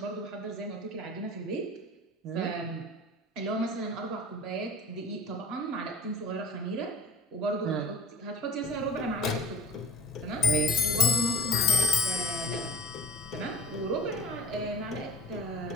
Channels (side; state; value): both; normal; correlation 0.45